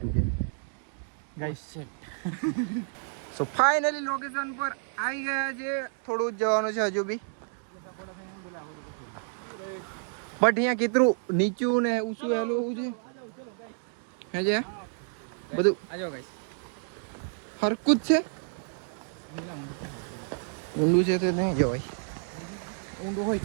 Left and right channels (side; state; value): left; silent; 58 dB below the other